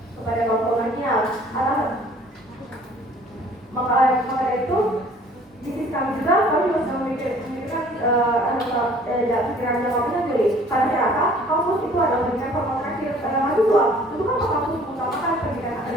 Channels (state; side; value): normal; both; correlation 0.54